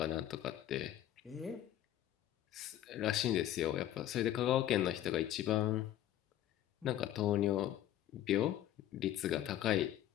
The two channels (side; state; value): right; quieter; 12.4 dB